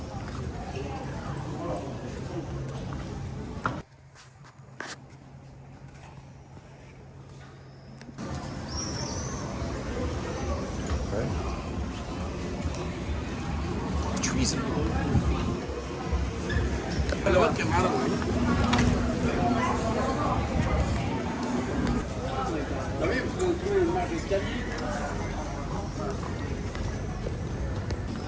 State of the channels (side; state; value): both; identical; correlation 1.00